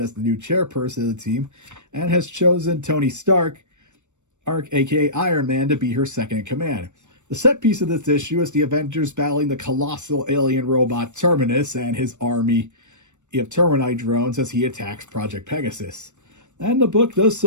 the new chairperson of the team and has chosen Tony Stark, aka Iron Man, to be her second in command. The set piece of this issue is the Avengers battling the colossal alien robot Terminus and his army of Terminite drones as he attacks Project Pegasus. And the book does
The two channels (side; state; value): left; late; 0.84 ms